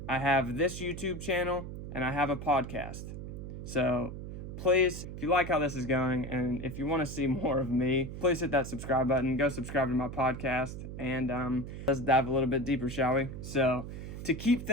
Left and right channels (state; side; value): noise; right; hum, 8 dB below the sound